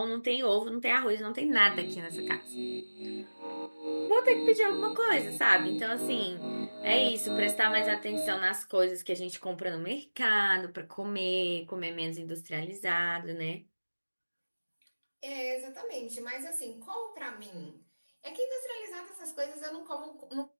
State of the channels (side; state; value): both; inverted; correlation -1.00